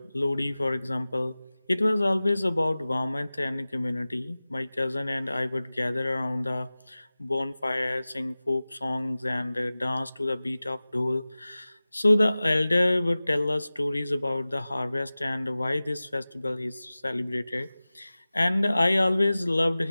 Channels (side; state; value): both; inverted; correlation -0.97